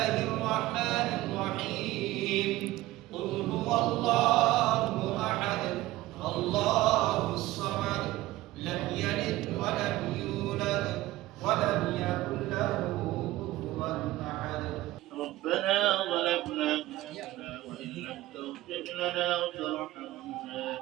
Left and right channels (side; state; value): left; quieter; 17.1 dB